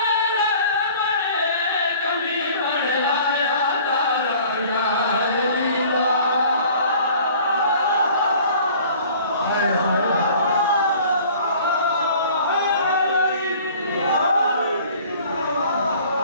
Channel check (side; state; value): both; inverted; correlation -0.50